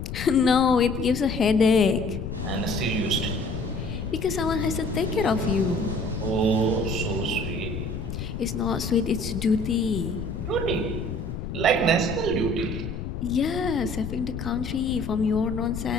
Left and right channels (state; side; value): noise; left; rumble, 6 dB below the sound